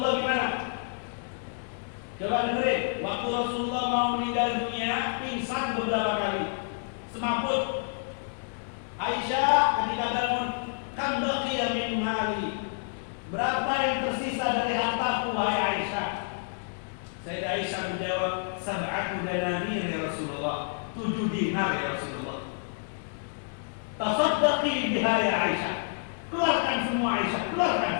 gimana? Coba dengerin. Waktu Rasulullah mau meninggal dunia, pingsan beberapa kali, semaput. Aisyah ketika bangun, kan baqiya min mali, berapa yang tersisa dari hartaku wahai Aisyah? Sayyidah Aisyah menjawab, 7 dananir ya Rasulullah, 7 dinar ya Rasulullah. Tasaddaqi biha ya Aisyah, keluarkan semua Aisyah, keluarkan,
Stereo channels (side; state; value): right; silent; digital silence